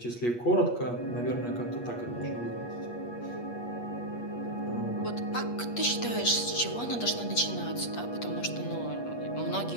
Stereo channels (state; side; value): late; right; 8.4 ms